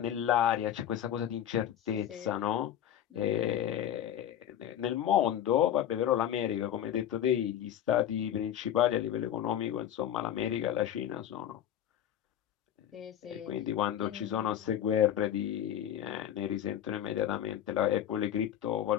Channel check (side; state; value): right; quieter; 10.6 dB